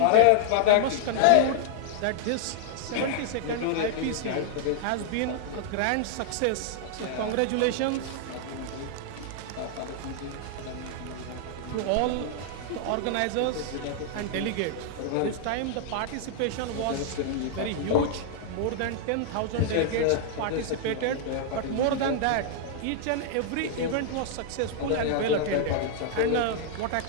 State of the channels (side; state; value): both; different; correlation -0.01